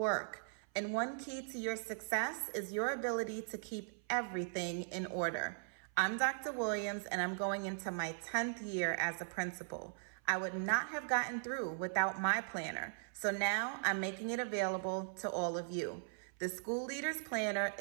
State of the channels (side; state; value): left; silent; 52 dB below the other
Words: and one key to your success is your ability to keep everything in order. I'm Dr. Williams, and I'm going into my 10th year as a principal. I would not have gotten through without my planner, so now I'm making it available to all of you. The School Leaders Planner